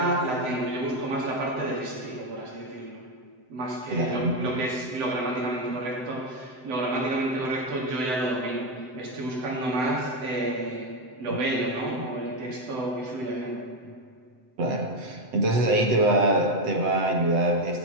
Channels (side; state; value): left; late; 7.8 ms